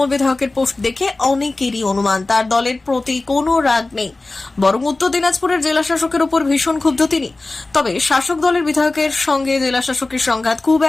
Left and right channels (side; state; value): right; quieter; 3.2 dB